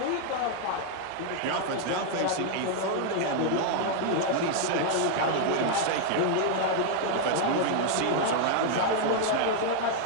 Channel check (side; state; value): both; different; correlation 0.00